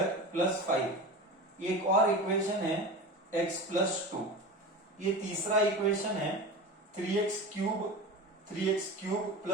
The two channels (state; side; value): normal; both; correlation 0.29